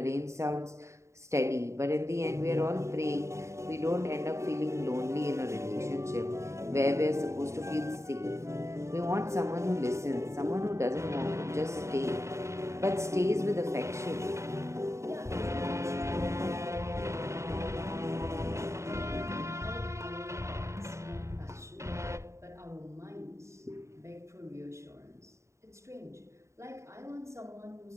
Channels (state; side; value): late; left; 0.14 ms